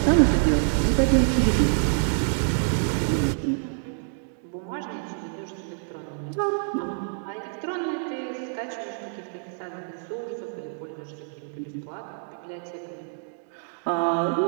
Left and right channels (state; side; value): silent; left; digital silence